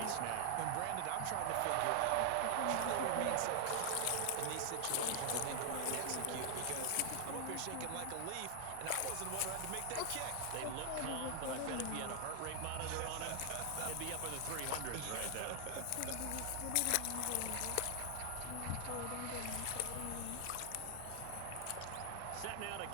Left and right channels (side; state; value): both; different; correlation 0.00